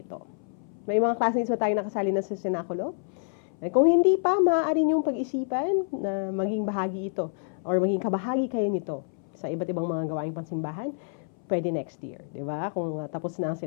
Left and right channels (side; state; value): right; silent; 60 dB below the other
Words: May mga classmates ba tayo nakasali na sa senakulo? Kung hindi pa, maaari niyong pag-isipan na maging bahagi ito or maging kabahagi kayo nito sa iba't ibang mga gawaing pansimbahan, pwede next year, di ba? Kung tapos na ang